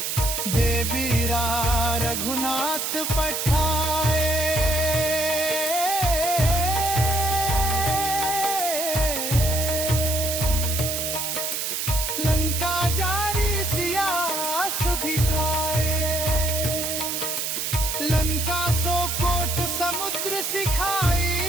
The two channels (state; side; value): noise; right; hiss, 2 dB below the sound